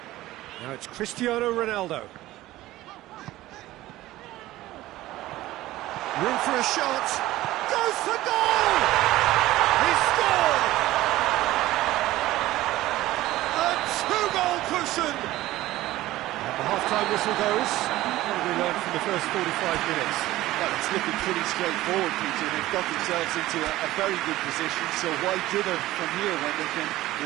Now it's Cristiano Ronaldo. Room for a shot. Goes for goal! He scored! A two-goal cushion! The half-time whistle goes. What have we learned from the first 45 minutes? Well, it's looking pretty straightforward, Peter. They've got themselves into a very good position, so why dither from here when they can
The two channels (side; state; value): left; quieter; 16.4 dB